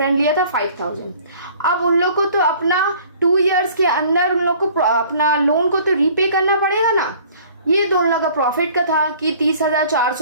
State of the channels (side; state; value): both; inverted; correlation -0.52